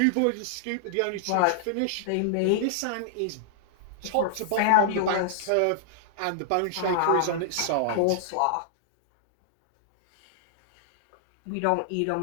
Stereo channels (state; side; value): different; both; correlation -0.01